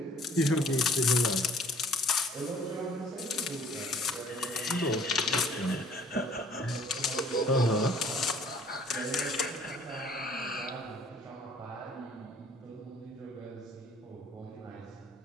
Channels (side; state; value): both; normal; correlation 0.55